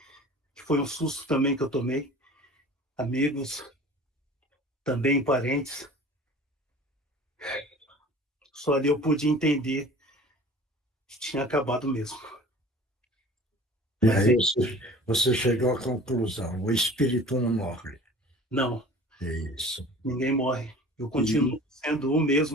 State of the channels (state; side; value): normal; both; correlation 0.44